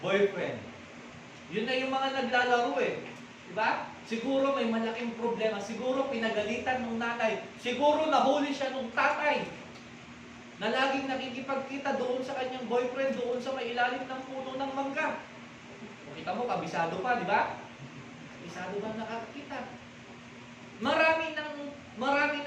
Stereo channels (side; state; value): both; identical; correlation 1.00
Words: Yun na yung mga naglalaro eh. Diba? Siguro may malaking problema. Siguro pinagalitan ng nanay. Siguro nahuli siya ng tatay na laging nakikipagkita doon sa kanyang boyfriend, doon sa may ilalim ng puno ng mangga. Kung kita mo, kabisado pa, di ba? Kabisado ba nakakita? Marami